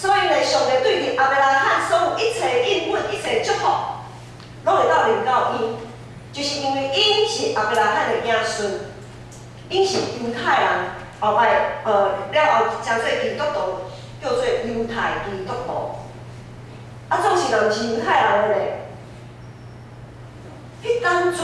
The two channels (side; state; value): both; identical; correlation 1.00